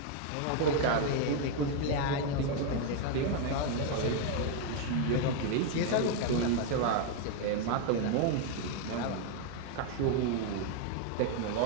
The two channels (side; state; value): both; different; correlation 0.01